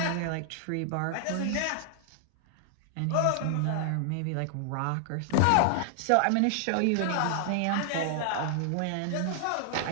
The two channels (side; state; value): both; different; correlation 0.00